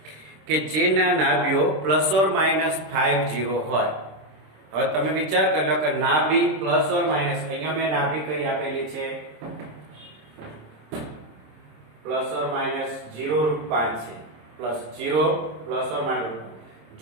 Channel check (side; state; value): left; late; 26 ms